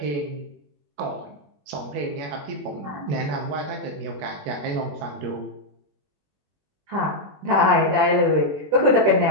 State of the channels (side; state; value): left; late; 21 ms